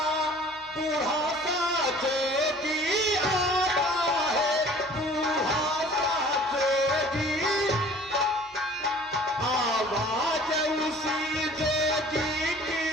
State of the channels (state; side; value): normal; both; correlation 0.49